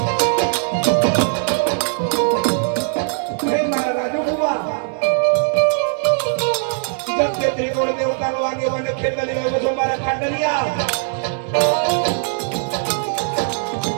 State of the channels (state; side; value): silent; left; digital silence